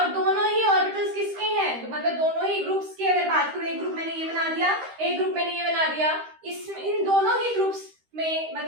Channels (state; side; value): late; left; 13 ms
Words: दोनों ही ऑर्बिटल्स किसके हैं, तो मतलब दोनों ही ग्रुप्स की अगर बात करूं, एक ग्रुप मैंने ये बना दिया, एक ग्रुप मैंने ये बना दिया, इन दोनों ही ग्रुप्स में